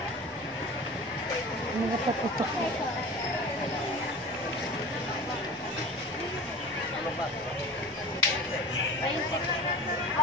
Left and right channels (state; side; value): normal; both; correlation 0.36